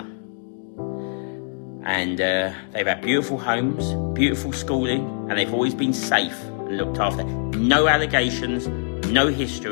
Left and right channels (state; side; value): silent; right; digital silence